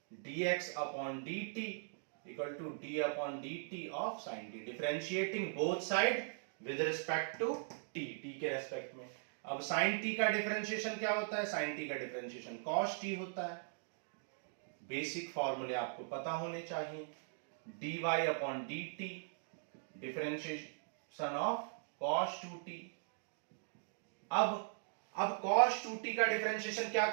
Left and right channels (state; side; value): silent; left; digital silence